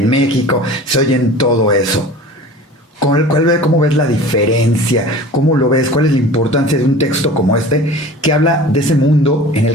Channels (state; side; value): normal; both; correlation 0.40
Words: México, se oye en todo eso. ¿Cómo ves la diferencia? ¿Cómo lo ves? ¿Cuál es la importancia de un texto como este que habla de ese mundo en